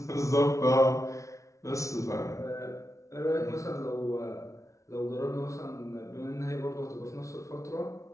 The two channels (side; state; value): right; late; 0.15 ms